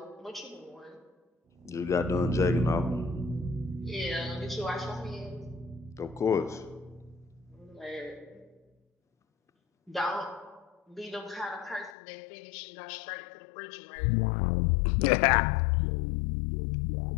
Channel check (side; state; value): right; drops out; at 12.0 s